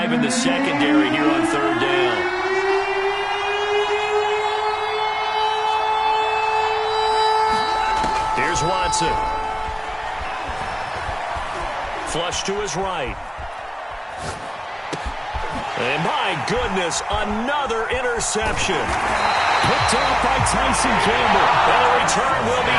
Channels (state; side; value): identical; both; correlation 1.00